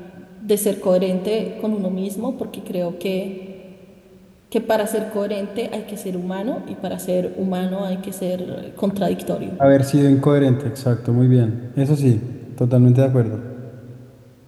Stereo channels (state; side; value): identical; both; correlation 1.00